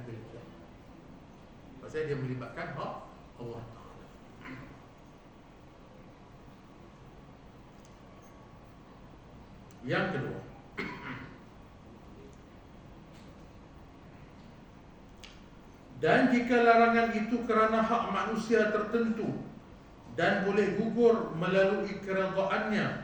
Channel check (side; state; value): both; identical; correlation 1.00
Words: kira. Pasal dia melibatkan hak Allah Ta'ala. Yang kedua, dan jika larangan itu kerana hak manusia tertentu dan boleh gugur melalui